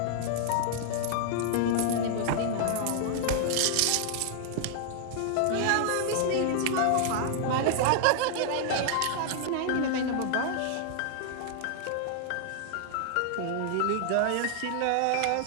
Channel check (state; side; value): different; both; correlation -0.01